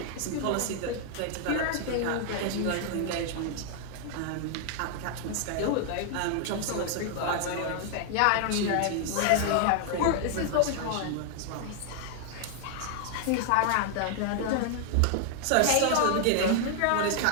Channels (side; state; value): both; different; correlation 0.00